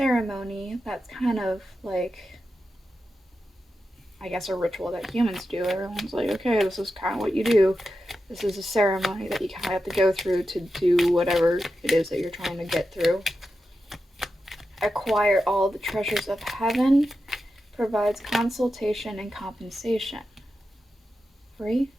that's kind of like, I guess, a ritual that humans do. Everyone's like, okay, this is kind of what you do. This is a ceremony that you kind of have to go through to do whatever it is that you're trying to get through. Acquire all the treasures of heaven, provides consultation and compensation. 3?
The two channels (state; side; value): normal; both; correlation 0.90